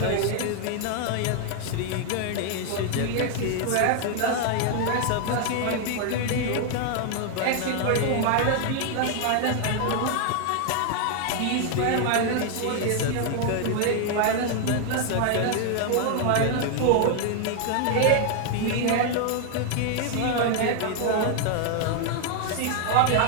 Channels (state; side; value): different; both; correlation 0.00